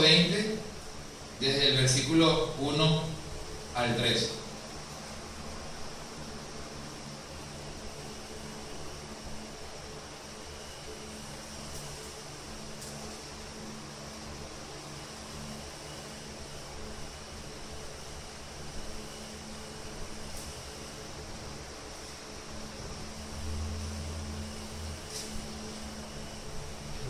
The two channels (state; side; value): identical; both; correlation 1.00